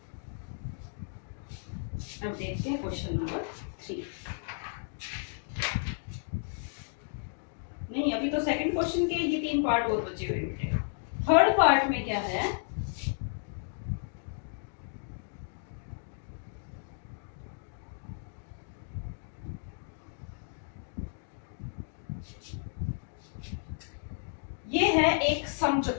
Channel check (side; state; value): right; silent; digital silence